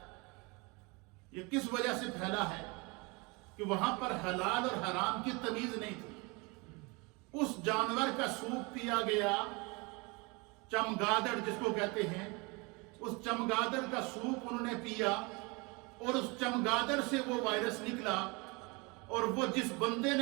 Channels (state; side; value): quieter; left; 28.0 dB